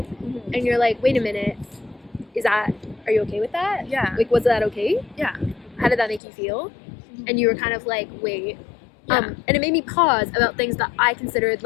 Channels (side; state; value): right; drops out; at 6.2 s